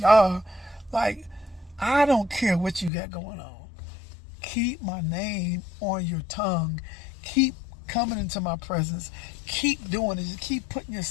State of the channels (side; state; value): right; drops out; at 2.9 s